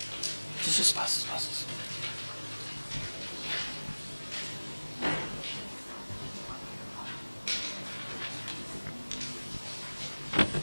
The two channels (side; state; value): both; inverted; correlation -1.00